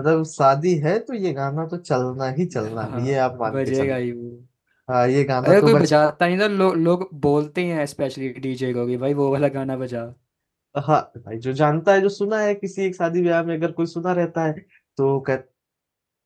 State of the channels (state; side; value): identical; both; correlation 1.00